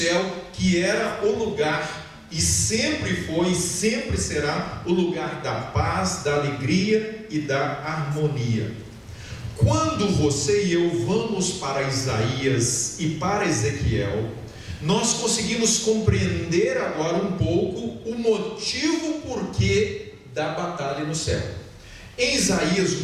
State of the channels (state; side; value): identical; both; correlation 1.00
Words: que era o lugar, e sempre foi, sempre será o lugar da paz, da alegria e da harmonia? Quando você e eu vamos para Isaías e para Ezequiel, nós conseguimos compreender agora um pouco o motivo porquê da batalha no céu. Em Isaías,